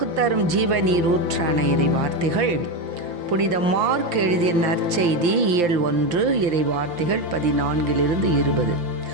தரும் ஜீவநீர் ஊற்றான இறை வார்த்தைகள் புனித மார்க் எழுதிய நற்செய்தி இயல் 1 இறை வார்த்தைகள் 14-20.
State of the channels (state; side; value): late; left; 5.8 ms